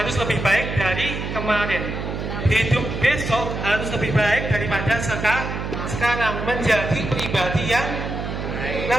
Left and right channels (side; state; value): right; noise; hum, 5 dB below the sound